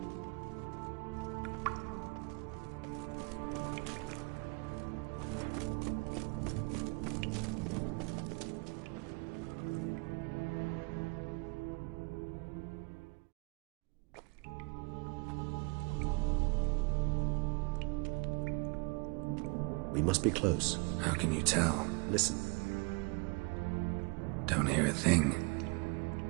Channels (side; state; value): left; quieter; 30.4 dB